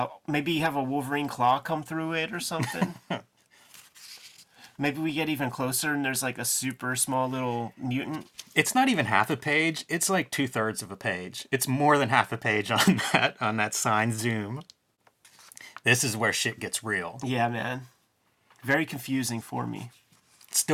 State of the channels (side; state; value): both; identical; correlation 1.00